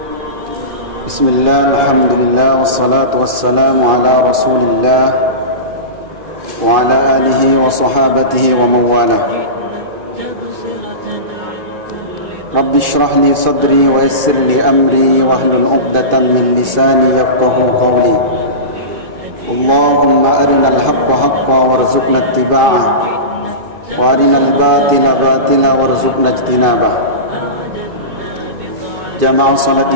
Bismillah, alhamdulillah, wassalatu wassalamu ala rasulillah wa ala alihi wa sahabatihi wa mawalah. Rabbi shrah li sadri wa yassir li amri wahlul 'uqdatam min lisani yafqahu qawli. Allahumma arinal haqqa haqqan warzuqna ittiba'ah wa arinal batila batila warzuqna ijtinabah. Jamaah salat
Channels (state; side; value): late; left; 2.9 ms